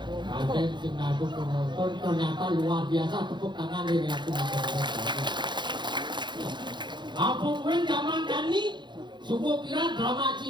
sing ngadu penonton ternyata luar biasa, tepuk tangan nih aku. Apa pun zaman kani subuh kira drama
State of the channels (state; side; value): late; left; 0.22 ms